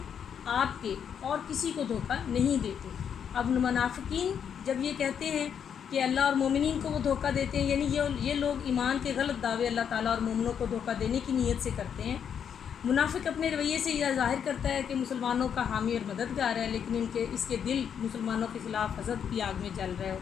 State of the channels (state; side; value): quieter; right; 8.0 dB